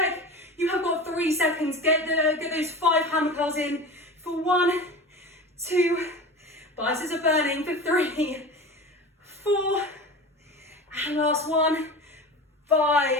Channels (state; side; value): normal; both; correlation 0.32